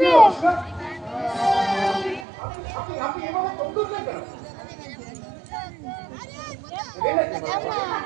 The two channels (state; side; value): drops out; left; at 2.2 s